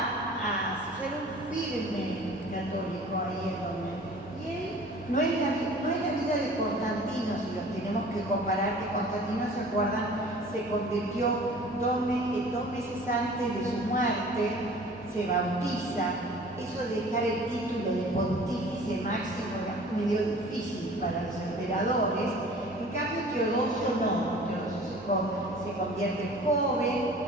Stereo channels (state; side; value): normal; both; correlation 0.46